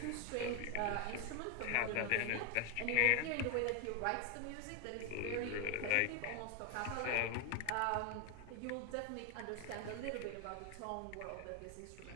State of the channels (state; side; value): different; both; correlation 0.01